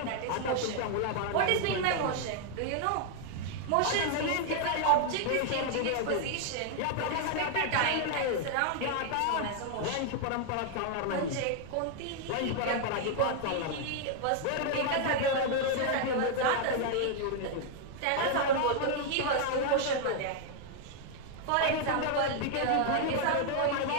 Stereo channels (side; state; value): both; different; correlation 0.00